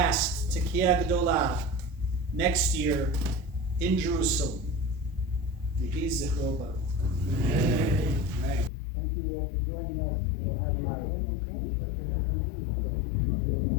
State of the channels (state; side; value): drops out; right; at 8.7 s